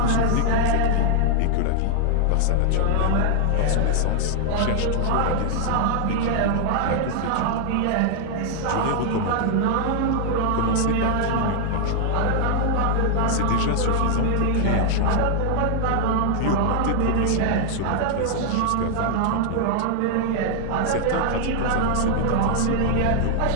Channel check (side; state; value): both; different; correlation 0.00